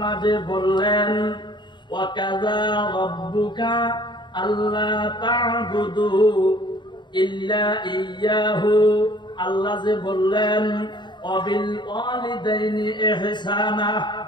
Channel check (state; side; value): late; right; 0.22 ms